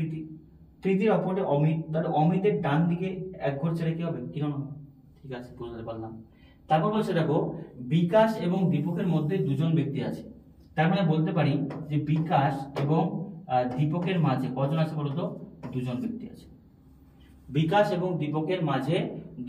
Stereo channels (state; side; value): identical; both; correlation 1.00